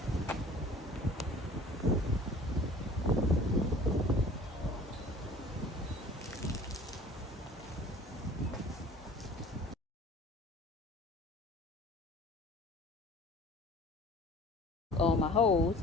On my hose,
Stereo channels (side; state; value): both; normal; correlation 0.47